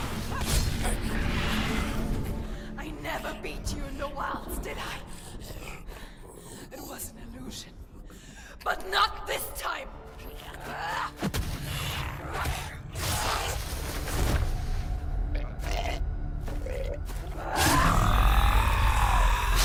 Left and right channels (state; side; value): identical; both; correlation 1.00